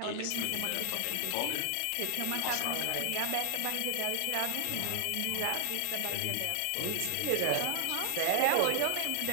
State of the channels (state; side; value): different; both; correlation 0.00